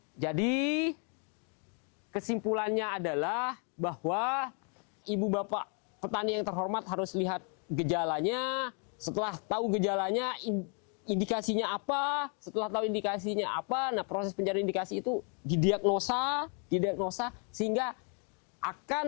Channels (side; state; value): right; quieter; 39.3 dB